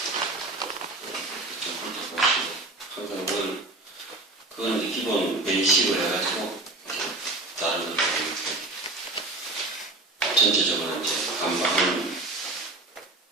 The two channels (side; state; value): left; quieter; 3.0 dB